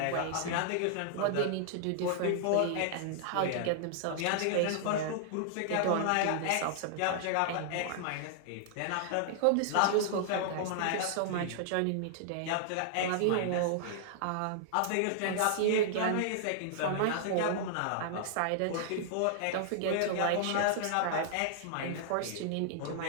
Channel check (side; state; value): both; different; correlation -0.01